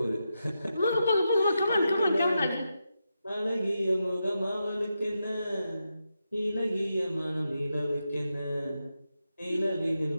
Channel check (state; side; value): inverted; both; correlation -0.87